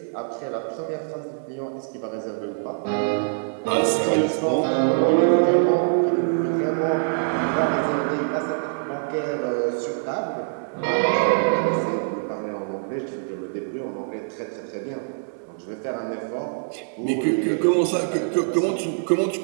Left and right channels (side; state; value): left; silent; 59 dB below the other